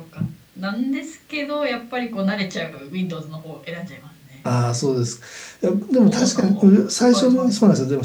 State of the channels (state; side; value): identical; both; correlation 1.00